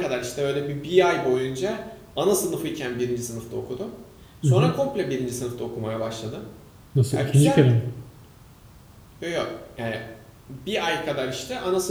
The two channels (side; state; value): both; identical; correlation 1.00